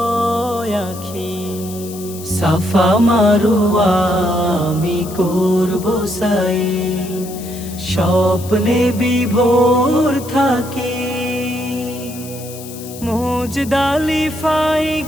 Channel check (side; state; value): left; noise; hiss, 15 dB below the sound